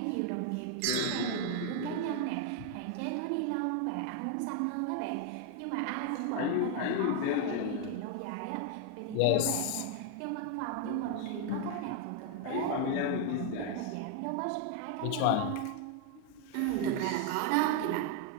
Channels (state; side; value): different; both; correlation 0.01